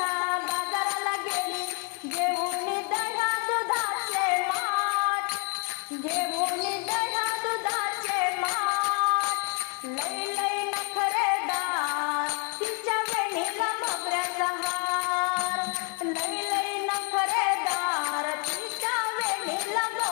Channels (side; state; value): right; quieter; 38.2 dB